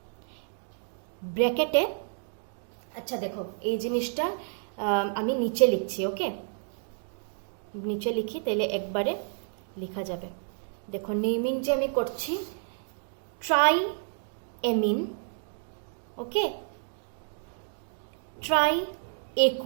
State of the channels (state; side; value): silent; left; digital silence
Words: ব্র্যাকেটে। আচ্ছা দেখো এই জিনিসটা আমি নিচে লিখছি, ওকে, নিচে লিখি, তাহলে একবারে লেখা যাবে। দেখো নেমিং যে আমি করছি, tri amine, okay, tri